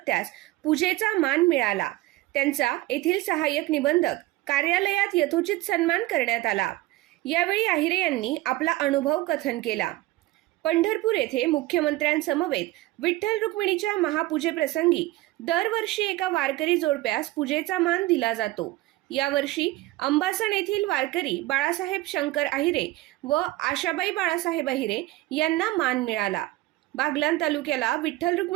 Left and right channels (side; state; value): left; quieter; 17.9 dB